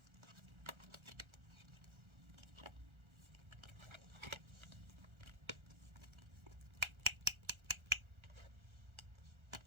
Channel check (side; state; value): left; late; 1.4 ms